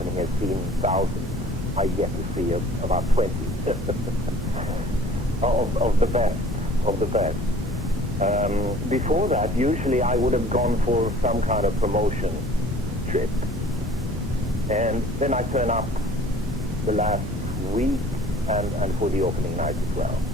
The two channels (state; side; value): normal; both; correlation 0.50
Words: has seen thousands. I get to see about 20 of the best. Before that, usually I would have gone for some kind of promotion trip, and then I turn up the last week and for the opening night as well.